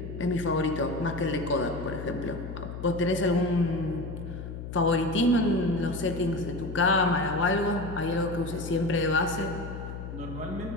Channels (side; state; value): left; noise; hum, 8 dB below the sound